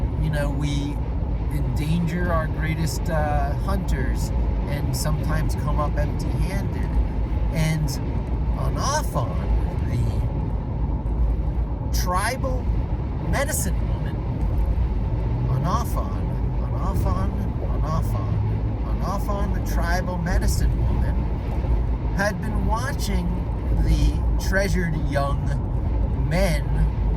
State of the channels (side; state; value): both; identical; correlation 1.00